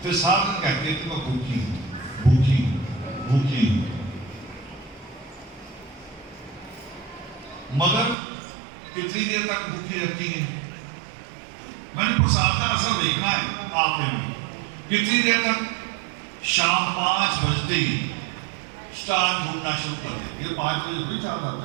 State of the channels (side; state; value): left; drops out; at 8.2 s